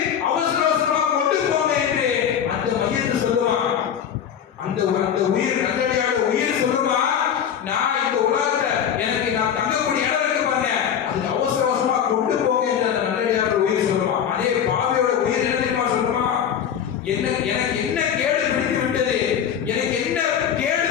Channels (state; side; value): quieter; right; 8.7 dB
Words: அவசர அவசரமா கொண்டு போங்க என்று அந்த மையத்தை சொல்லுமா. அந்த உயிர் நல்லடியார உயிர் சொல்லுமா, நான் இந்த உலகத்துல எனக்கு நான் தங்கக்கூடிய இடம் இருக்கு பாருங்க, அதுக்கு அவசர அவசரமா கொண்டு போங்க என்று அந்த நல்லடியார உயிர் சொல்லுமா. அதே பாவியோட உயிர் என்ன தெரியுமா சொல்லுமா? எனக்கு என்ன கேடு பிடித்து விட்டது, எனக்கு என்ன கேடு